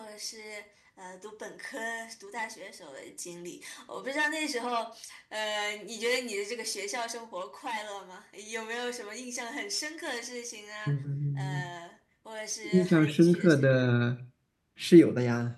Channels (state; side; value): identical; both; correlation 1.00